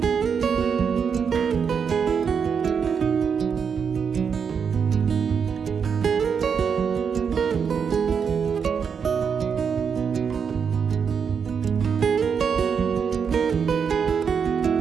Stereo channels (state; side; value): quieter; left; 6.6 dB